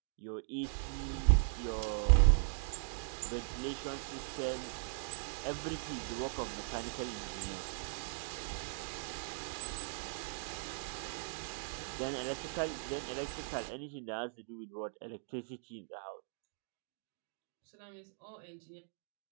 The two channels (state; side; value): silent; left; digital silence